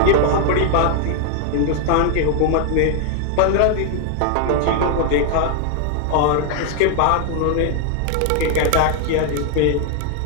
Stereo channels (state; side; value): different; both; correlation 0.00